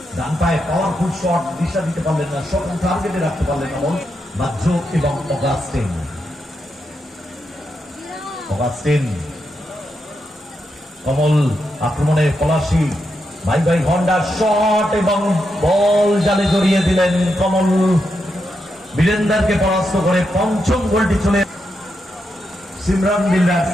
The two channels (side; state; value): both; normal; correlation 0.84